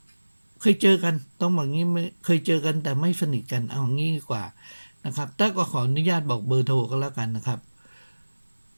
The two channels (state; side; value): inverted; both; correlation -1.00